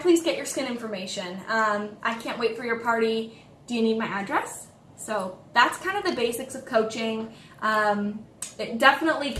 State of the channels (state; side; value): identical; both; correlation 1.00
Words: get your skin information? I can't wait for your party. Do you need my address? So that's kind of the basics of coaching. It definitely